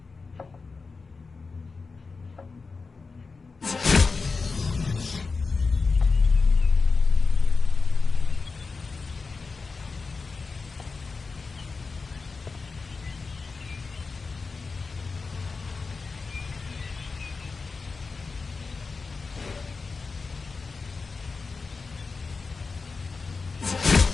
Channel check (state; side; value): quieter; right; 4.4 dB